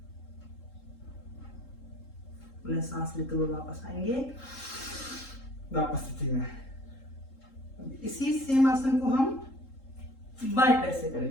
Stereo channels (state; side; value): late; right; 3.7 ms